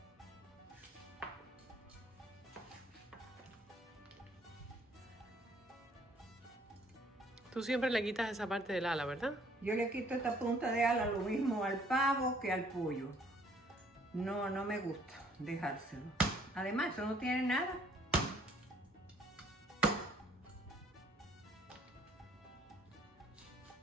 Tú siempre le quitas esa parte del ala, ¿verdad? Yo le quito esta punta de ala lo mismo al pavo que al pollo. No me gusta dejárselo. Además, eso no tiene nada.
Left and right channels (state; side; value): normal; both; correlation 0.61